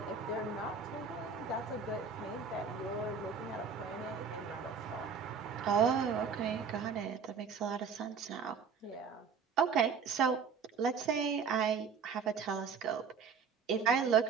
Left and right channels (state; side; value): quieter; left; 6.0 dB